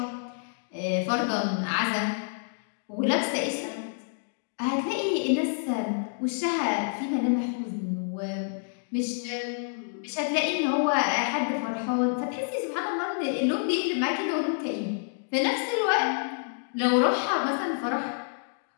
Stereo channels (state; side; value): silent; right; digital silence